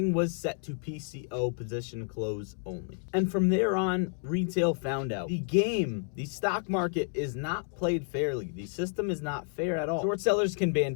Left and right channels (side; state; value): right; silent; 58 dB below the other